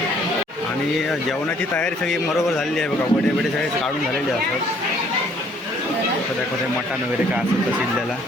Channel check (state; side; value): normal; both; correlation 0.61